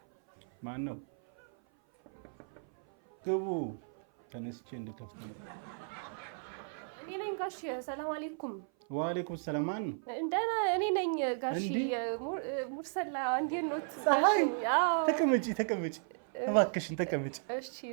ማን ነው ግቡ ተነስቼ እንድከፍት ነው እኔ ነኝ ጋሽ ሰላም አለይኩም ወአለይኩም ሰላም ማን ነው እንደና እኔ ነኝ ጋሽ ሙርሰላ እንዴት ነው ፀሐይ ተቀመጪ እባክሽን ተቀመጪ እሺ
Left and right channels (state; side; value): silent; left; 55 dB below the other